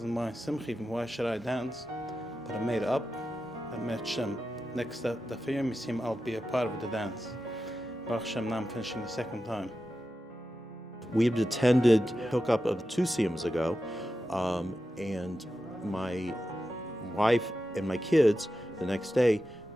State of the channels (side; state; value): both; normal; correlation 0.91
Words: my simcha even. Why should I dance? But I made up. I met Shem. Next the Yom Siyum, I'll be a part of the dance. Baruch Shem, now I'm finishing the second time. We had attended hookup of 2 Siyums ago, and my wife and my kids the next day